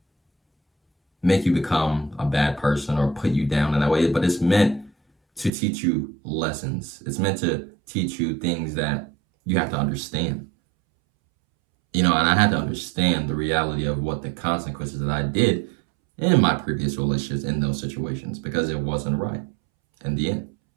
make you become a bad person or put you down in that way, but it's meant to teach you lessons. It's meant to teach you things that you have to understand. And I had to understand the reality of what the consequences that I did in my previous relationships in those situations, because it wasn't right in the end.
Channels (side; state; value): left; drops out; at 5.5 s